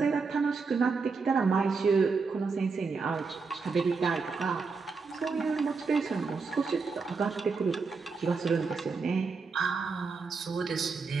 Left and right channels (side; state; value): left; quieter; 4.7 dB